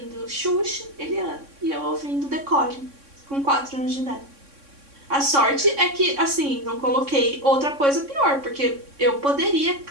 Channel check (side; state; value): left; late; 3.6 ms